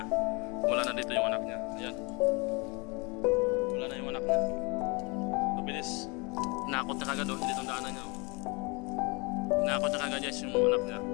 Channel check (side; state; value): right; quieter; 28.9 dB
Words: Wala na dito yung anak niya. Ayan. Wala na yung anak niya. Mabilis. Hinakot na kagad doon, hindi itong daanan niya. Hinakot na kagad guys yung anak niya.